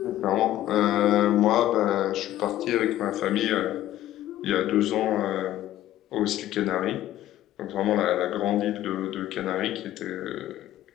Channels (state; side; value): quieter; right; 13.6 dB